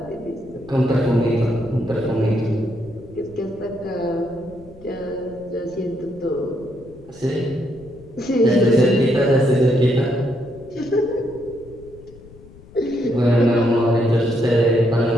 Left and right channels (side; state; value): left; noise; rumble, 21 dB below the sound